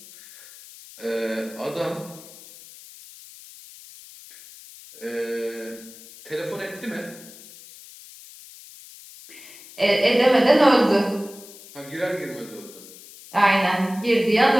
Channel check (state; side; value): noise; left; hiss, 19 dB below the sound